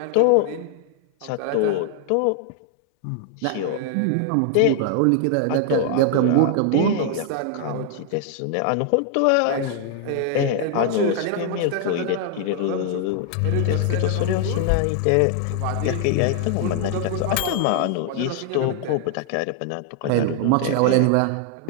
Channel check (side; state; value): both; different; correlation 0.00